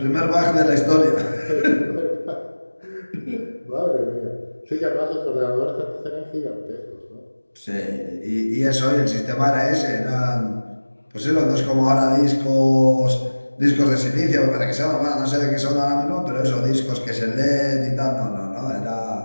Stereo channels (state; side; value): inverted; both; correlation -1.00